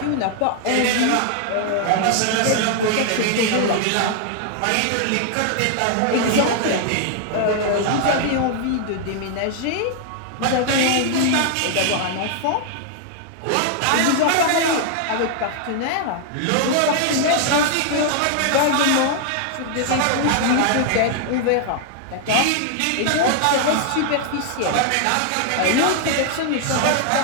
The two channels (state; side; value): different; both; correlation 0.00